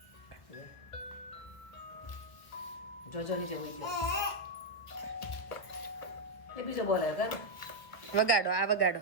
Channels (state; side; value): late; right; 1.2 ms